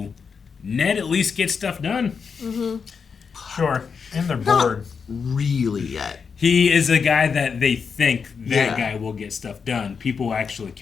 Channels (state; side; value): quieter; right; 5.9 dB